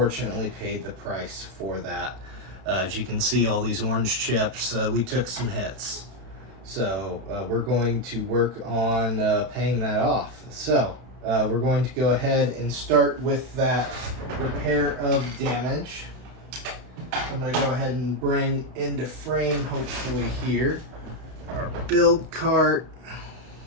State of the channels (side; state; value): left; late; 32 ms